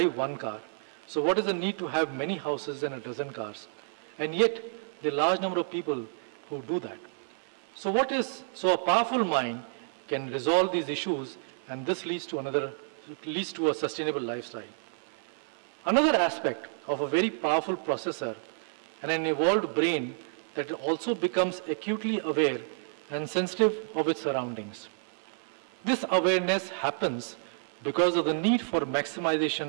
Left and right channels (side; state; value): left; silent; digital silence